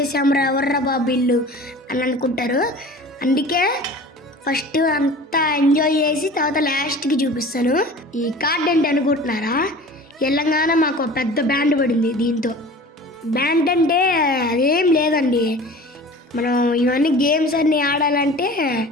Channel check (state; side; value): normal; both; correlation 0.41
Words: ఎవర్రా బాబు ఇల్లు అని అనుకుంటారు. అందుకే ఫస్ట్ అంతా ఎంజాయ్ చేసి తర్వాత లాస్ట్కి చూపిస్తాను. ఈ కార్డ్ ఏంటి అనుకుంటున్నారా? తెలంగాణ మాకు పెద్ద బ్యాండ్ పడింది. దీంతో బ్యాండ్ అంటే అదేం లేదండి, మనం ఇవన్నీ గేమ్స్ అన్నీ ఆడాలంటే